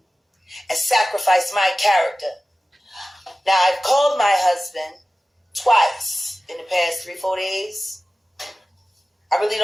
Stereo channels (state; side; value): normal; both; correlation 0.96